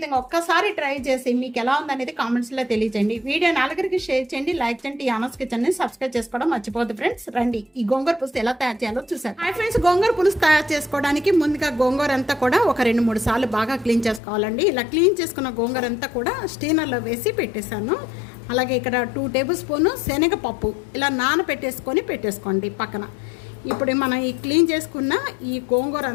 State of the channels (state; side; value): drops out; right; at 14.2 s